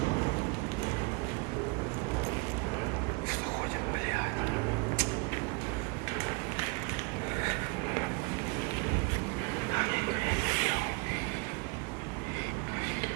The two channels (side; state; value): left; quieter; 30.1 dB